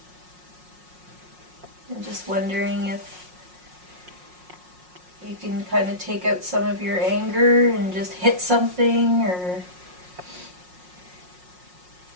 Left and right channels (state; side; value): late; left; 5.5 ms